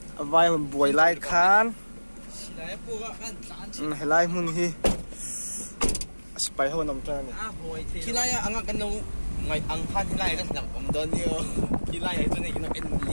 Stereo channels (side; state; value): both; inverted; correlation -1.00